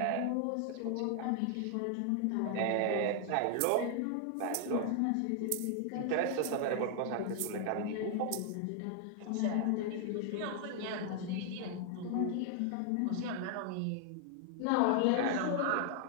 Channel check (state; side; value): different; both; correlation 0.00